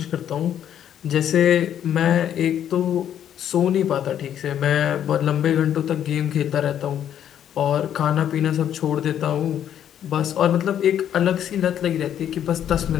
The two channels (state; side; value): quieter; right; 10.0 dB